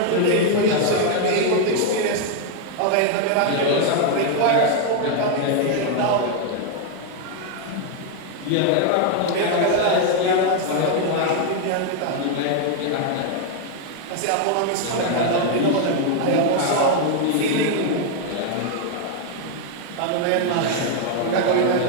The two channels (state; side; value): different; both; correlation 0.01